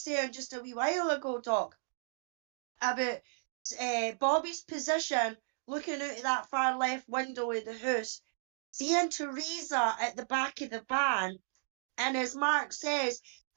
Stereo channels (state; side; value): silent; left; digital silence